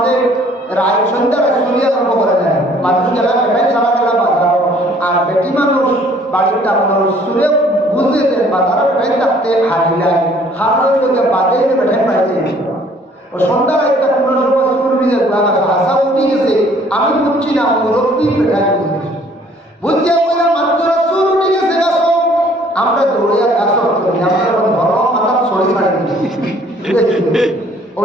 রায় সন্ধ্যার সুরিয়া আরম্ভ করে দেয়। মানুষ গেলা বেটাই সারা গেলা বাজার আর বেটি মানুষ বাড়ির তার সুরে বুঝতে দেন বাজার বেটাই থাকতে হারি নাই হারের লোকে বাদে বেটাই পাইছে ও সন্ধ্যার একটা কোনো সময় সুর ভিজে হাসা উঠি গেছে। আমি বুঝছি না মুরব্বী বেটাই বুঝেছি বুঝতে বলে মাত্র সুর উঠে গেছে গাছ আমরা দৌড়িয়া গাছ আমরা ঘর মাথা ছড়ি ছাড়ি ও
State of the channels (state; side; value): normal; both; correlation 0.58